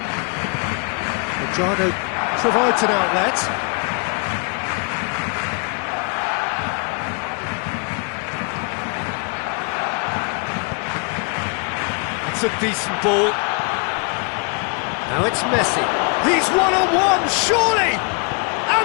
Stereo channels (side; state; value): right; quieter; 36.6 dB